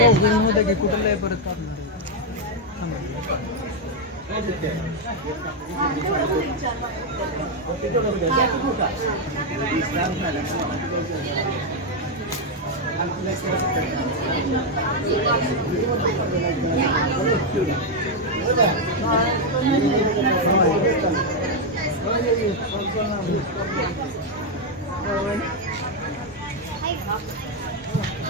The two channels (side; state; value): both; normal; correlation 0.02